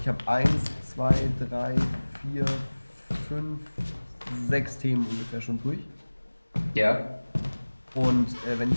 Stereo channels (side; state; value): both; inverted; correlation -1.00